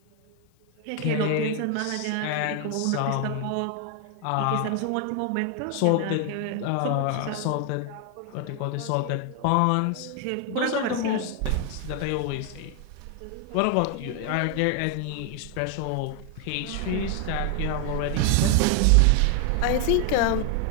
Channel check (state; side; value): different; both; correlation 0.00